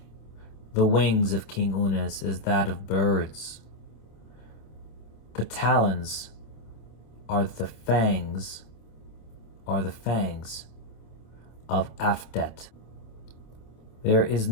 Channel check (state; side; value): late; right; 26 ms